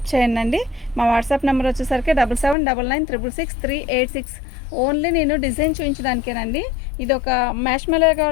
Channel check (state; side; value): drops out; right; at 2.6 s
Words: చేయండి. మా వాట్సాప్ నెంబర్ వచ్చేసరికి 7799666386. ఓన్లీ నేను డిజైన్ చూపించడానికేనండి. ఇది ఒక మ్యాష్మెలో